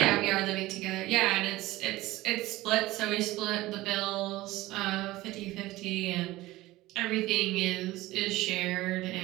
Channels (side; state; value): left; quieter; 18.1 dB